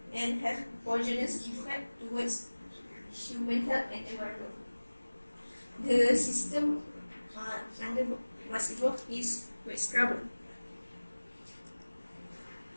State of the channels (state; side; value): inverted; both; correlation -1.00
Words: and have poisonous effect towards human health and environment. The system under was involved is wet scrubber.